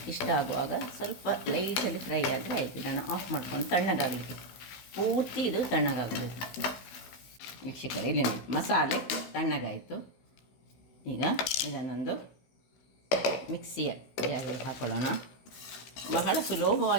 ಇಷ್ಟ ಆಗುವಾಗ ಸ್ವಲ್ಪ ಲೈಟಲ್ಲಿ ಫ್ರೈ ಆದರೆ ಆಯಿತು. ನಾನು ಆಫ್ ಮಾಡ್ಕೊಂಡು ತಣ್ಣಗಾಗಲಿಕ್ಕೆ, ಪೂರ್ತಿ ಇದು ತಣ್ಣಗಾಗಬೇಕು. ವೀಕ್ಷಕರೇ, ಇಲ್ಲಿ ನೋಡಿ, ಮಸಾಲೆ ತಣ್ಣಗಾಯಿತು. ಈಗ ಇದನ್ನೊಂದು ಮಿಕ್ಸಿಯ ಜಾರಿಗೆ ಹಾಕೊಳ್ಳೋಣ. ಬಹಳ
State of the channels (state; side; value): late; right; 16 ms